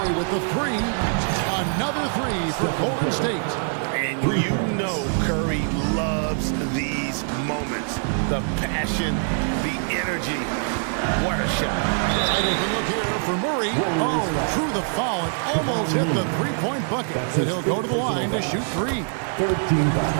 with the three. Another three for Golden State. And you know Curry loves these moments. The passion, the energy. What a shot. Right open look here for Murray. Oh, through the foul. It almost hit the three-point bucket. And he'll go to the line to shoot three. 13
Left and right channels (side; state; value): left; silent; 63 dB below the other